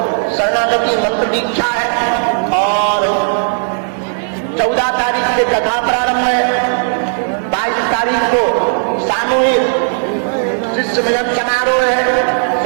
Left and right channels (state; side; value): silent; left; 62 dB below the other